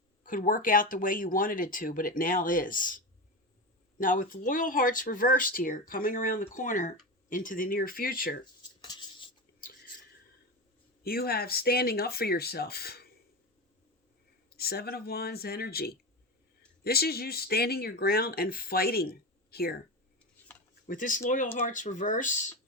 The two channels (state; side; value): normal; both; correlation 0.21